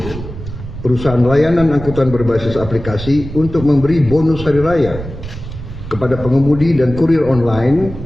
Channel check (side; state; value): right; noise; rumble, 11 dB below the sound